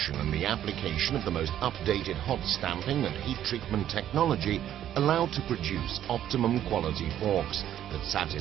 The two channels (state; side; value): quieter; left; 11.3 dB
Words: and the application of the most updated hot stamping and heat treatment technology allow to produce optimum quality forks that